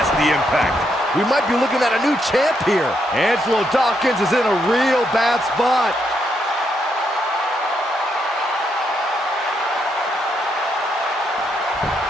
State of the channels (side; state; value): both; normal; correlation 0.78